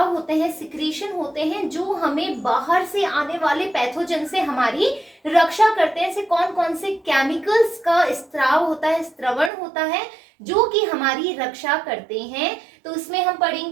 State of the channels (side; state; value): left; drops out; at 9.5 s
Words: होते हैं, सिक्रीशन होते हैं जो हमें बाहर से आने वाले पैथोजन से हमारी रक्षा करते हैं। ऐसे कौन कौन से केमिकल्स का स्त्राव होता है, स्त्रवण होता है जो कि हमारी रक्षा करते हैं। तो इसमें हम